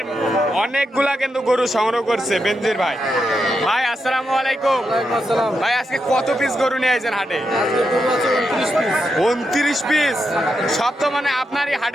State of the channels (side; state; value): both; normal; correlation 0.84